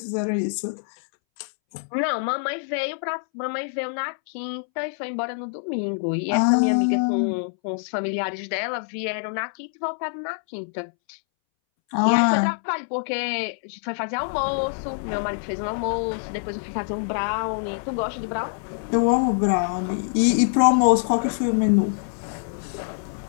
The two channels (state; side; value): silent; right; 62 dB below the other